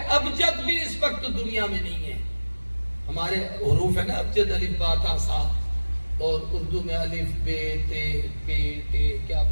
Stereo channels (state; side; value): inverted; both; correlation -1.00